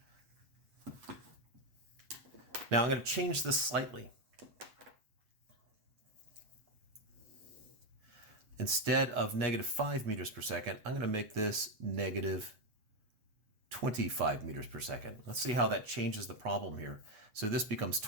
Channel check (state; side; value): late; left; 8.2 ms